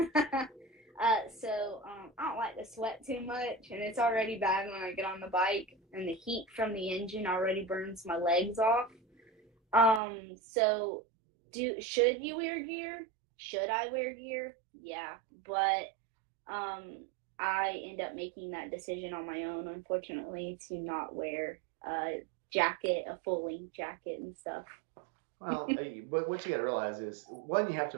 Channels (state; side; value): drops out; left; at 10.0 s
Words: so I don't like to sweat too much, and it's already bad when I get on the bike, and the heat from the engine already burns my legs off. So should you wear gear? Should I wear gear? Yeah, but um, I end up making that decision on my own, unfortunately, to not wear a jacket, a full length jacket and stuff. Well, but what you got to realize is one, you have